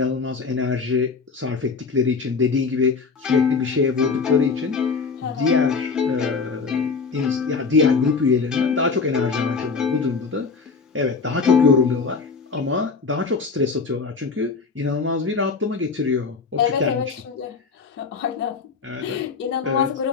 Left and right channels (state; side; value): quieter; right; 4.8 dB